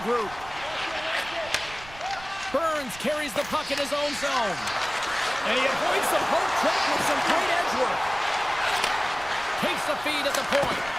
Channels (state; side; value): noise; right; rumble, 18 dB below the sound